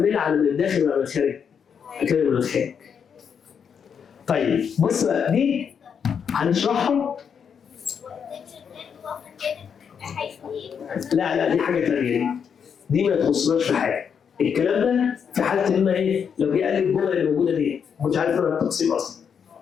على من الداخل ولا من الخارج؟ هكمل من الخارج. طيب بص بقى دي هنشرحها. لا دي حاجه ثانيه. دي ما تخصناش في حاجه. الكلام ده في حاله ان ايه؟ لو جه قال لي الجمله اللي موجوده دي ما كنتش عارف انا التقسيم اصلا.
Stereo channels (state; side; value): quieter; right; 7.2 dB